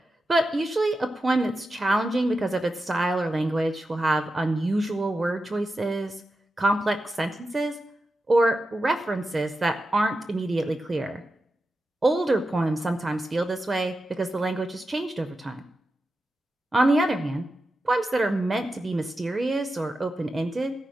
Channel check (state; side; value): normal; both; correlation 0.90